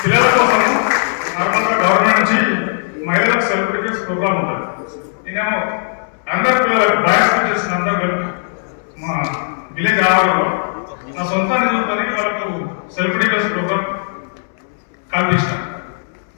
పిల్లల కోసం నార్మల్గా గవర్నమెంట్ నుంచి మహిళలకు సెలబ్రిటీస్ ప్రోగ్రామ్ ఉంటుంది. నేనేమో అందరు పిల్లలకు బాయ్స్ టీచర్స్ అందరూ కలిపి మా విలేజ్ ఆవరణలో నా సొంత నిధులతో వాళ్ళకు సెలబ్రిటీస్ ప్రోగ్రామ్ కల్పించిన.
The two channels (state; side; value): silent; right; 68 dB below the other